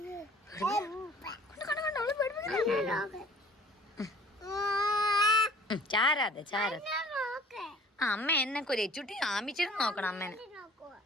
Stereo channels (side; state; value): both; normal; correlation 0.51